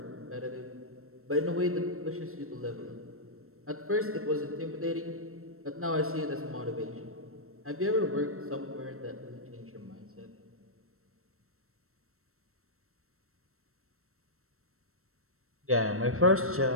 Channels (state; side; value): late; left; 0.63 ms